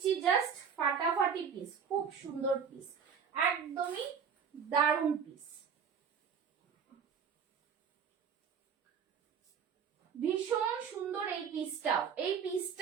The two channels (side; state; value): left; quieter; 6.9 dB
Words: জাস্ট ফাটাফাটি পিস, খুব সুন্দর পিস, একদমই দারুণ পিস, ভীষণ সুন্দর এই পিসটাও। এই